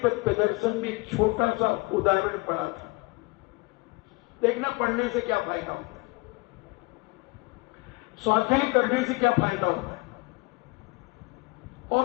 प्रदर्शन में एक छोटा सा उदाहरण पढ़ा था। देखना, पढ़ने से क्या फायदा होता है, स्वाध्याय करने से क्या फायदा होता है।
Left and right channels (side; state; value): right; quieter; 25.1 dB